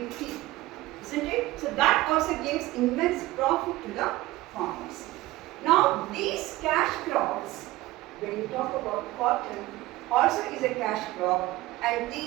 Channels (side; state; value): left; quieter; 17.9 dB